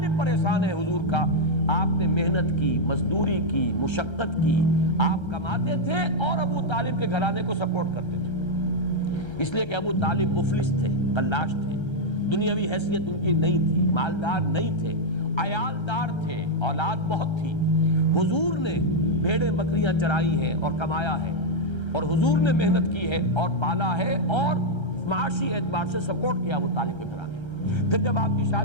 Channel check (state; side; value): late; right; 1.3 ms